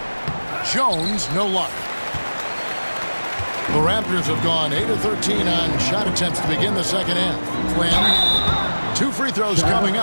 Jones, no luck. The Raptors have gone 8 of 13 on shot attempts to begin the second half. Flynn, 2 free throws coming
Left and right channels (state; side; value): inverted; both; correlation -1.00